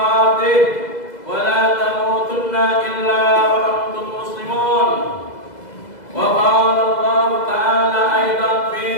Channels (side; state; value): right; late; 2.0 ms